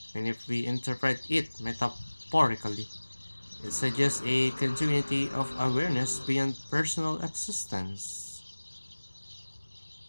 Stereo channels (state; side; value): inverted; both; correlation -1.00